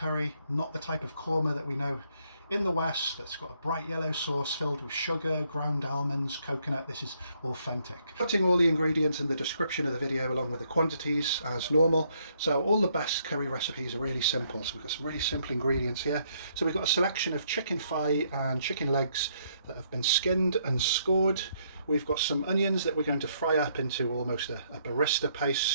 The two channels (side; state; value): both; inverted; correlation -0.71